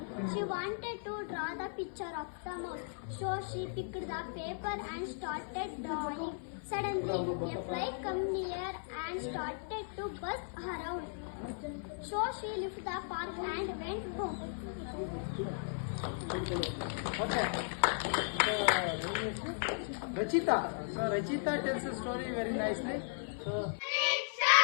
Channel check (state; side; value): silent; right; 53 dB below the other